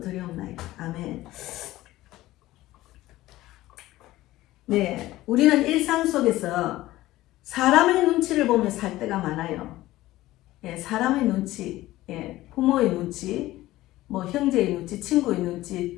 아멘. 네, 우리는 일상 속에서 사람의 눈치를 보며 살 때가 많아요. 사람의 눈치, 부모의 눈치, 뭐 형제의 눈치, 친구의 눈치,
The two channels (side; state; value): right; quieter; 16.6 dB